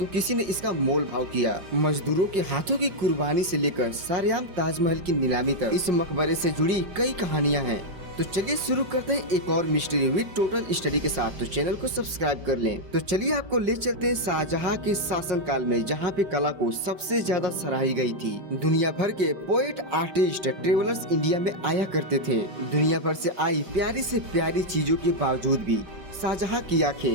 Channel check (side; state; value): left; late; 5.1 ms